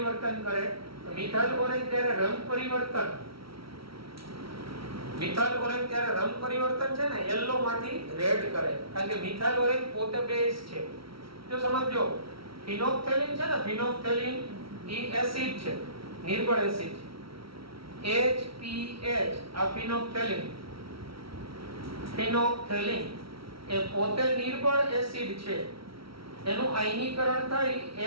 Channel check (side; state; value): left; late; 0.75 ms